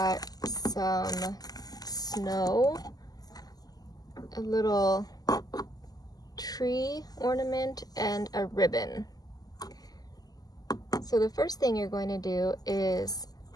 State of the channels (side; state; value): right; late; 0.18 ms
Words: some snow, a little tree ornament, and a ribbon. So the first thing you're going to do is